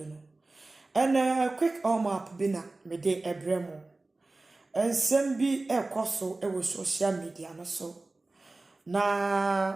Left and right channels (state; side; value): quieter; left; 3.2 dB